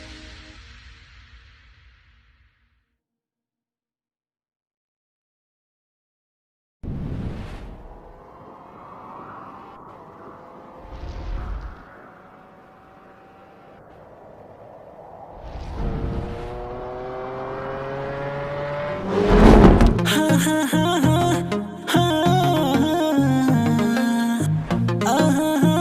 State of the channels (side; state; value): both; identical; correlation 1.00